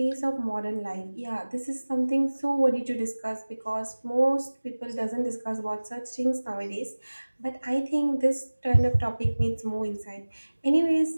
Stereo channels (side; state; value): both; inverted; correlation -1.00